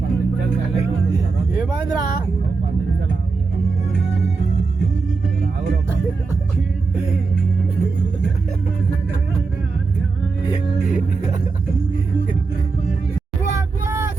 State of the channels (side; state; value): left; quieter; 4.3 dB